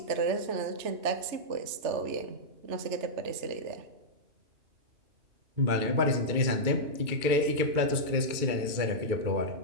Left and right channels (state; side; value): late; left; 2.3 ms